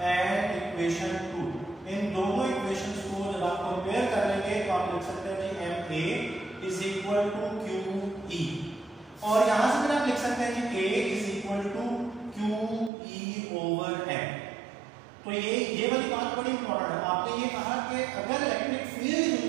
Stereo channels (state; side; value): drops out; left; at 12.9 s